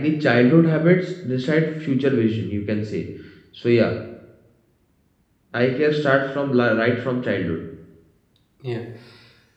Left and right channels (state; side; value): identical; both; correlation 1.00